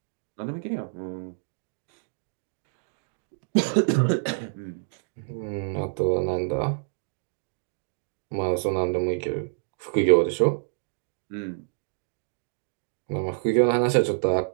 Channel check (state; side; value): silent; left; digital silence